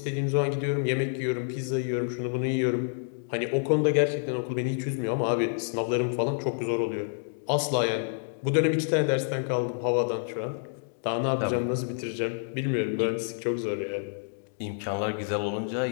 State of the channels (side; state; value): right; silent; digital silence